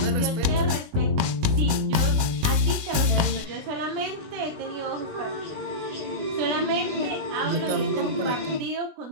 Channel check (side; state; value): left; late; 19 ms